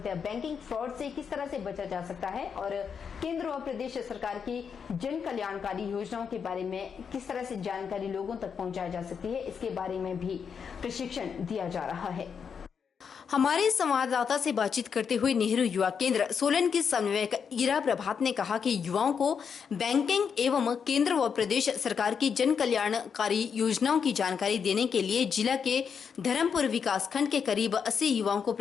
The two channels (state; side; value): quieter; right; 6.7 dB